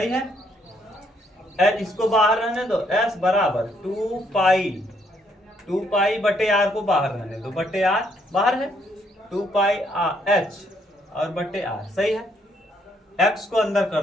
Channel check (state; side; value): normal; both; correlation 0.71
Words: है। इसको बाहर रहने दो, एस बराबर 2 पाई बटे आर को बाहर रहने दो, बटे आर बाहर है, 2 पाई एच और बटे आर, सही है। एक्स को अंदर